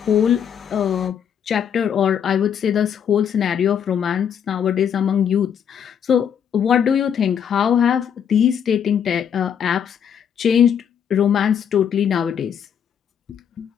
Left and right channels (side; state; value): right; quieter; 8.3 dB